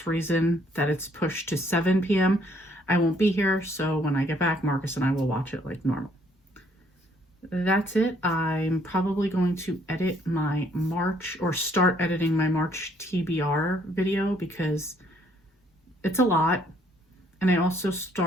reason that it's pushed to 7 p.m. I won't be here, so when I get back, Marcus and I will watch it like normal. That's it. I'm probably going to edit my March, or start editing my March TBR video because it's a lot. And I also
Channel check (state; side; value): normal; both; correlation 0.66